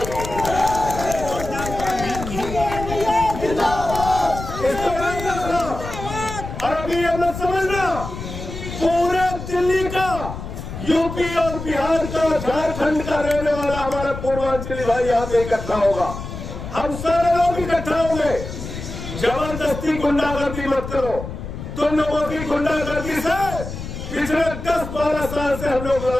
और अभी ये मत समझना, पूरे दिल्ली का, यूपी और बिहार का, झारखंड का रहने वाला हमारा पूर्वांचली भाई यहाँ पे इकट्ठा होगा। हम सारे लोग इकट्ठा होंगे। जबरदस्ती गुंडागर्दी मत करो। तुम लोगों की गुंडागर्दी से पिछले 10-12 साल से हम लोग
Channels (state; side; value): noise; left; rumble, 8 dB below the sound